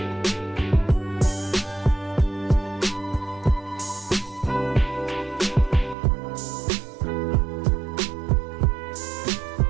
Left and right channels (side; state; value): left; drops out; at 6.0 s